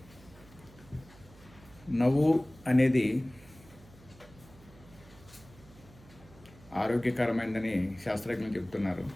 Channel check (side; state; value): right; noise; hum, 23 dB below the sound